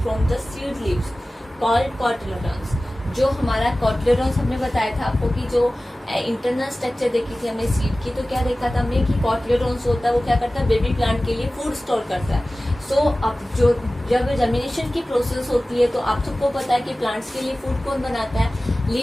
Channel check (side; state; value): both; normal; correlation 0.97